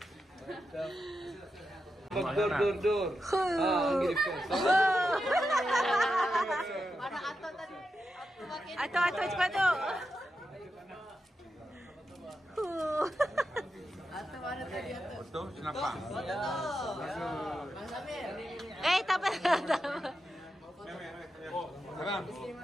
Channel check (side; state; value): both; normal; correlation 0.88